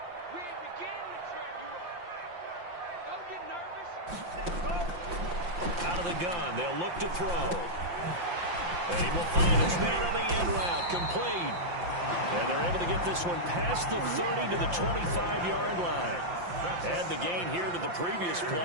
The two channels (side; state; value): left; late; 5.7 ms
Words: Out of the gun, they'll look to throw. And he will find his man on the end route, complete. And they're able to get this one past the 30 to the 25-yard line. Add the gain here to the previous